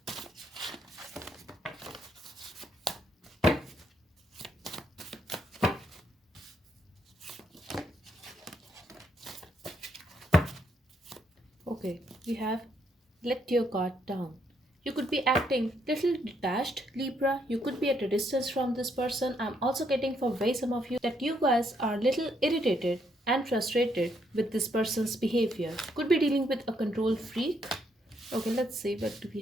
Okay, we have let your guard down. You could be acting little detached, Libra. You could be at a distance from this person. I'm also getting for way some of you that you guys are little irritated and frustrated with this person's behavior. Could be dealing with a control freak. Okay, let's see what do we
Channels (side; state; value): both; normal; correlation 0.74